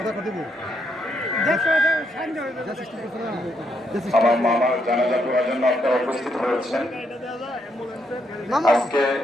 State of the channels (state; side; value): normal; both; correlation 0.77